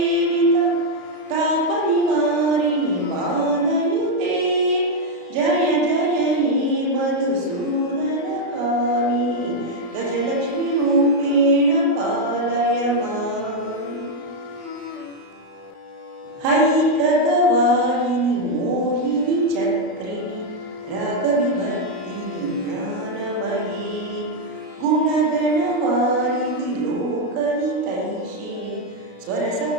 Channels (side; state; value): left; late; 33 ms